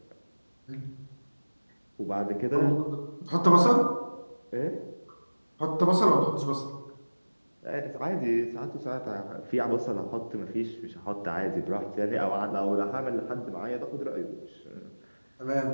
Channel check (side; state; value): both; inverted; correlation -1.00